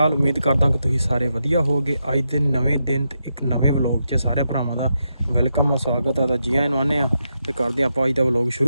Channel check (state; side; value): inverted; both; correlation -0.84